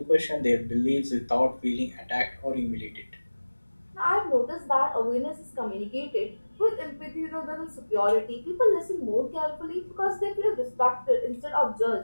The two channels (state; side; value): inverted; both; correlation -1.00